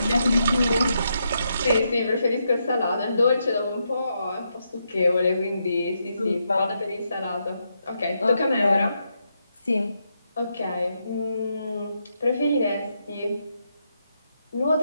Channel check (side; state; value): both; inverted; correlation -0.81